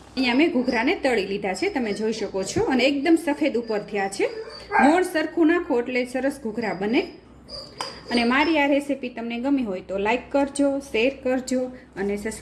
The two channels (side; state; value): both; identical; correlation 1.00